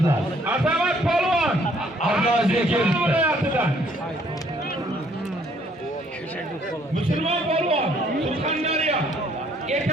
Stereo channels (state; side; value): normal; both; correlation 0.64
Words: Azamat polvon. Abdulazizga keldi. Musulmon polvon, Surxondaryo.